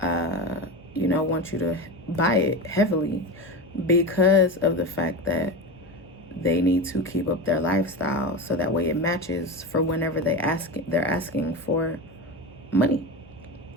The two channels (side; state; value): left; noise; hum, 26 dB below the sound